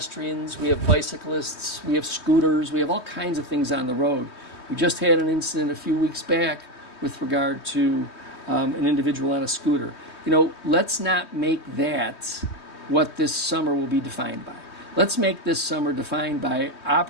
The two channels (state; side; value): late; right; 3.2 ms